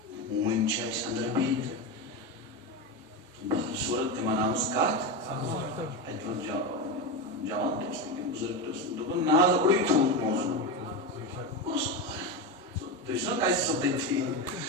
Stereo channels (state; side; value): normal; both; correlation 0.16